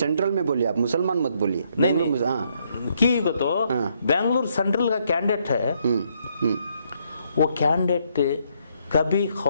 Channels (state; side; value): inverted; both; correlation -0.72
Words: में बोलिए, आप मुसलमान मत बोलिए। नहीं हाँ। की को तो बेंगलुरु सेंट्रल का कैंडिडेट है। वो कैंडिडेट कभी